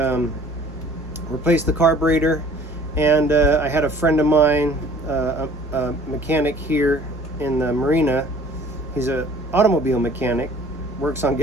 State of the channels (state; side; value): normal; both; correlation 0.52